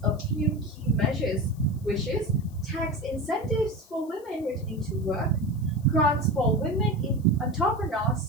a few key measures, which is tax incentives for women returning to work, grants for women in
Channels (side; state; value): left; noise; hiss, 27 dB below the sound